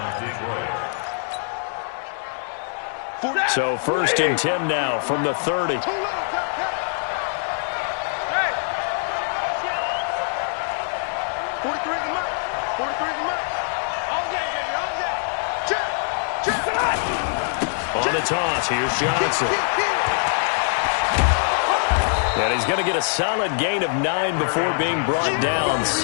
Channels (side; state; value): right; silent; digital silence